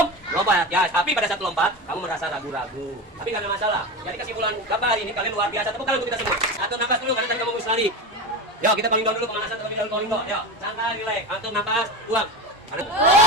Ya, tapi pada saat lompat, kamu merasa ragu-ragu. Tapi nggak ada masalah. Jadi kesimpulan Bapak hari ini, kalian luar biasa. Tepuk tangan untuk kita semua. Atur nafas dulu, karena tadi kamu harus lari. Yo, kita paling down dulu pemanasan, terlebih dahulu calling down. Yo, santai, relax. Atur nafas, buang. 5, 6,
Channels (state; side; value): normal; both; correlation 0.23